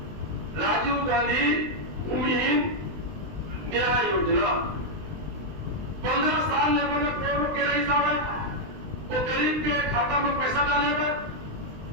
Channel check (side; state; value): left; late; 20 ms